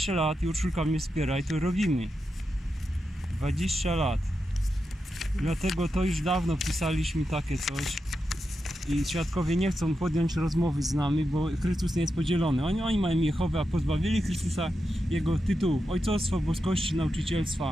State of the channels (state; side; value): normal; both; correlation 0.88